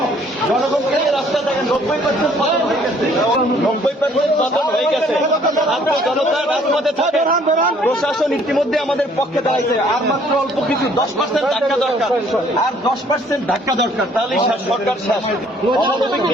জনগণকে নিয়ে রাস্তায় থাকেন। 90% পতন হয়ে গেছে, 90% পতন হয়ে গেছে। ছাত্র জনতা রাজপথে থাকে, প্রশাসন ইতিমধ্যে আমাদের পক্ষে দাঁড়াইছে। আর মাত্র অল্প কিছু 10% ধাক্কা দরকার, আর 10% ধাক্কা দরকার, তাহলেই সরকার শেষ। অমানবিক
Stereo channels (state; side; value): normal; both; correlation 0.60